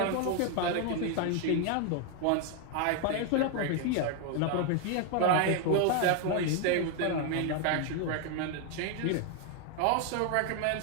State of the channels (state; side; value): different; both; correlation 0.01